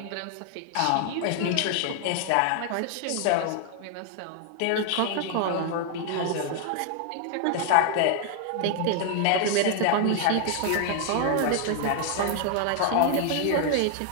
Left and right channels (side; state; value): both; different; correlation 0.00